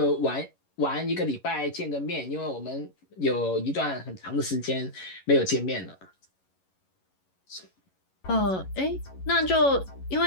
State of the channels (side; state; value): right; late; 11 ms